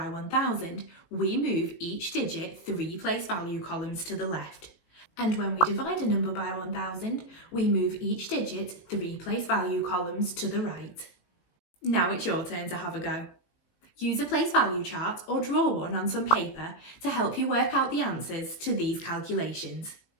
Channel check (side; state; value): right; late; 19 ms